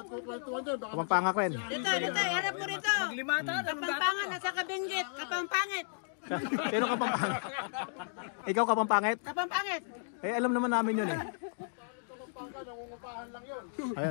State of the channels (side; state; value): right; silent; digital silence